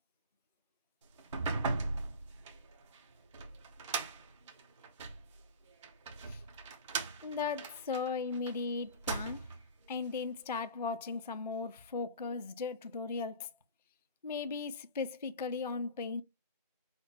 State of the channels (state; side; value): inverted; both; correlation -0.35